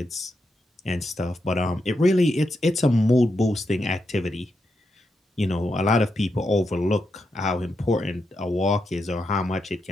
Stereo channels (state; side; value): normal; both; correlation 0.84